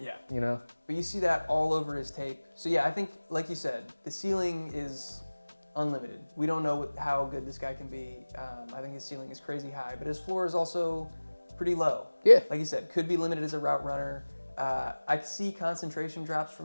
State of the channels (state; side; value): inverted; both; correlation -1.00